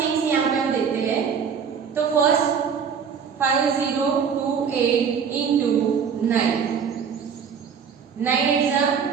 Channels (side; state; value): left; quieter; 6.8 dB